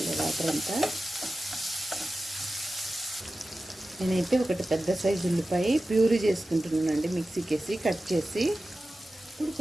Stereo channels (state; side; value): normal; both; correlation 0.94